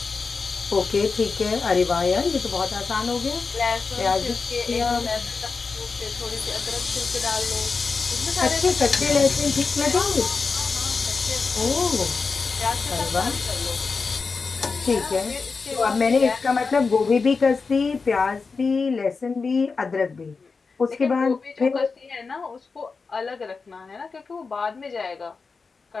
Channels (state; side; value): quieter; right; 4.6 dB